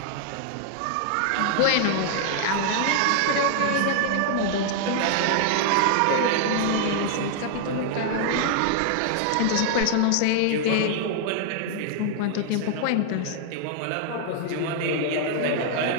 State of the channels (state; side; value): different; both; correlation 0.00